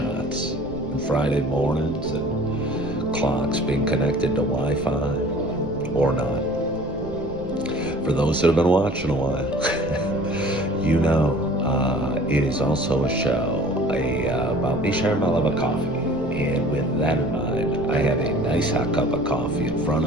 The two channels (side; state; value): right; noise; rumble, 17 dB below the sound